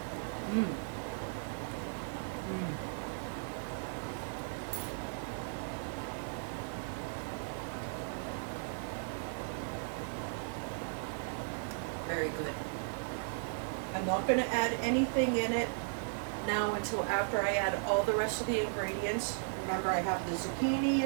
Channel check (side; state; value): left; silent; digital silence